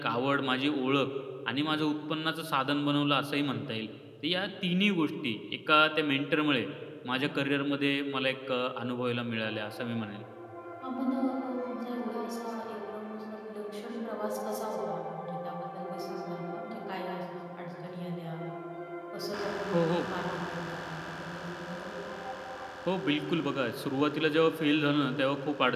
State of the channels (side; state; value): both; identical; correlation 1.00